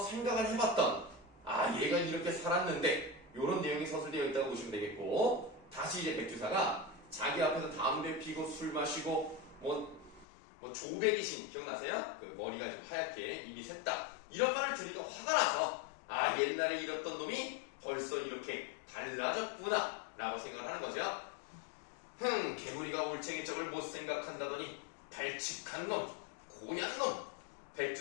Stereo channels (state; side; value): drops out; right; at 10.2 s